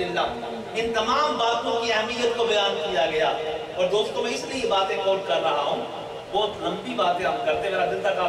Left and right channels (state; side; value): identical; both; correlation 1.00